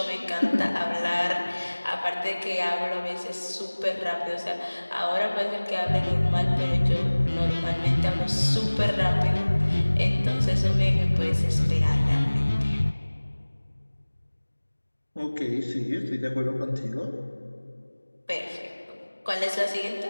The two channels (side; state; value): both; inverted; correlation -1.00